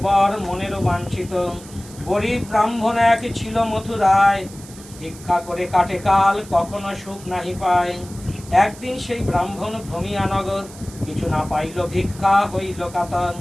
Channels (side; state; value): right; noise; hiss, 19 dB below the sound